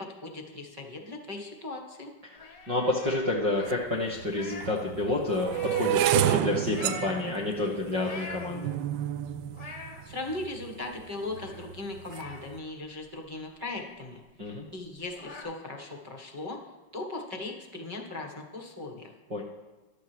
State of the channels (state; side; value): late; left; 6.0 ms